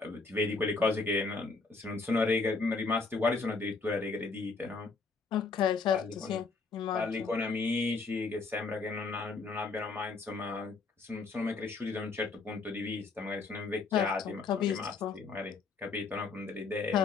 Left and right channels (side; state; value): right; quieter; 4.2 dB